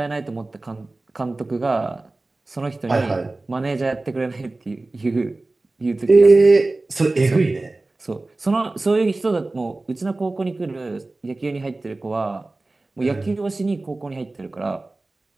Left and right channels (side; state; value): left; quieter; 3.1 dB